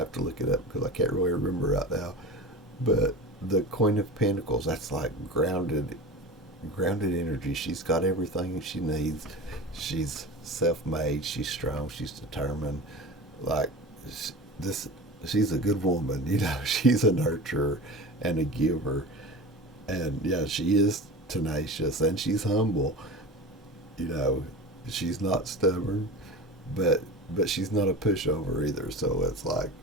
to look it up because I can't really remember right now. But the Queen of Pentacles, that's like grounded energy. She's got everything she needs. She's self-made. She's strong. She's determined. Like, she's a good woman. You know, she's a nurturer and a giver. And yeah, she is tenacious and she's humble. You know, she's not stubborn, but she's not a pushover either. So it's like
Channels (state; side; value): normal; both; correlation 0.31